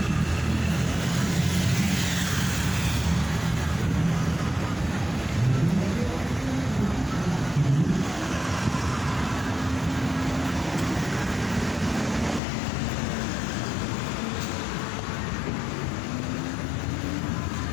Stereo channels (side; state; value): right; drops out; at 12.4 s